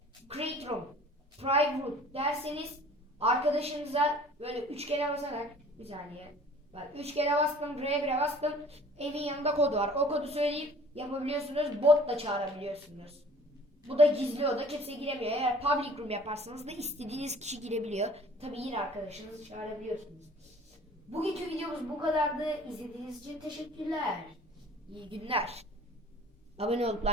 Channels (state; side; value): normal; both; correlation 0.49